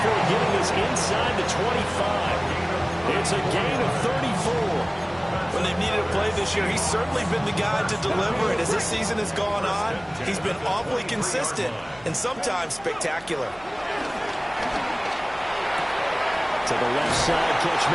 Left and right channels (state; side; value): noise; left; hum, 25 dB below the sound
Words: getting this inside the 25. It's a gain of 34. When they've needed a play this year, he's certainly been the guy to deliver it. As this season has gone on, he's been awfully consistent and sometimes spectacular. To the left side, catch